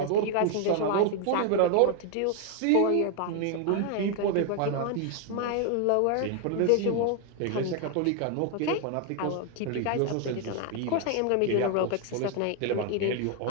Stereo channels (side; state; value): both; different; correlation 0.01